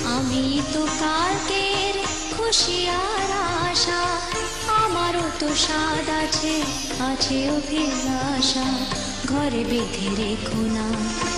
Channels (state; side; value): identical; both; correlation 1.00